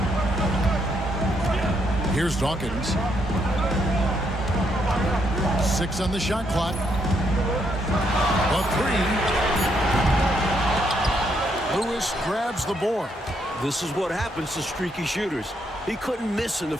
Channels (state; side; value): normal; both; correlation 0.75